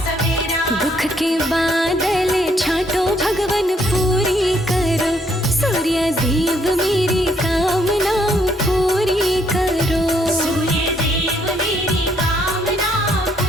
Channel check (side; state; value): both; normal; correlation 0.70